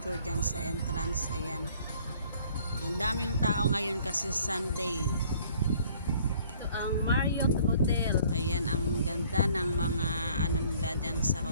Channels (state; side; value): inverted; both; correlation -0.57